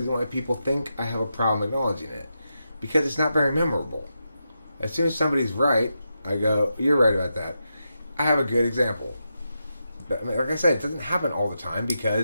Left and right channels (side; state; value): both; inverted; correlation -0.87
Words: why people think I have a problem acknowledging it. Because it's not very memorable. As soon as somebody's right, I go, you're right about that. I have a good example. But, I mean, like I said, it doesn't happen all the time